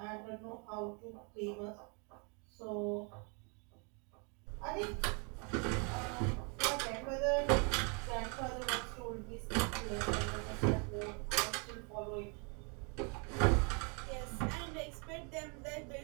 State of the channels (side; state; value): left; quieter; 35.3 dB